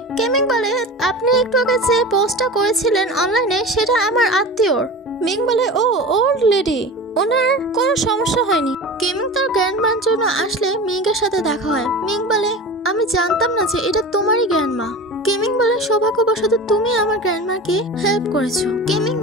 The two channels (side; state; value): both; normal; correlation 0.32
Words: কেমিং বলে আপনি একটু আগে যে পোস্টটা করেছিলেন অনলাইনে সেটা আমার আত্মীয়র। মিং বলে ও ওল্ড লেডি, ওনার কোনো সমস্যা হয়নি। কেমিং তার গ্র্যান্ডমার জন্য আসলে মিংয়ের সাথে দেখা হয়। মিং বলে আমি জানতাম না যে এটা তোমারই গ্র্যান্ডমা। কেমিং বলে সৌভাগ্যবশত তুমি আমার গ্র্যান্ডমাকে হেল্প করেছো। কেমিং